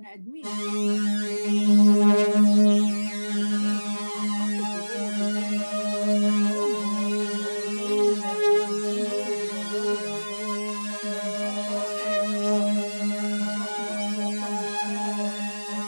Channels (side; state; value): both; inverted; correlation -1.00